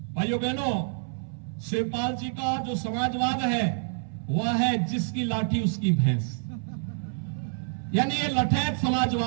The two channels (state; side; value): silent; left; 60 dB below the other